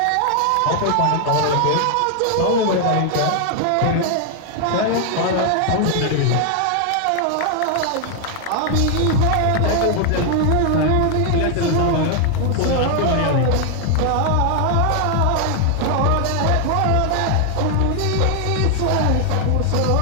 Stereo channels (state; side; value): different; both; correlation 0.00